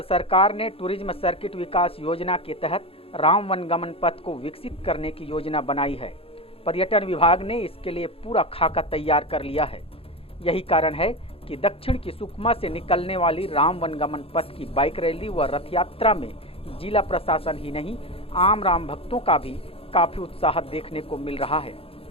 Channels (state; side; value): late; right; 0.27 ms